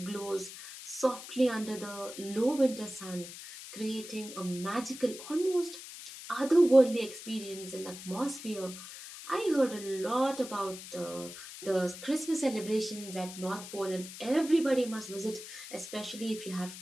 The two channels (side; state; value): left; noise; hiss, 12 dB below the sound